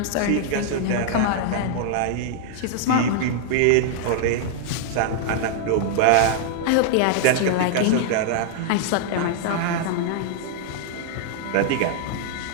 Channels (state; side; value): different; both; correlation -0.01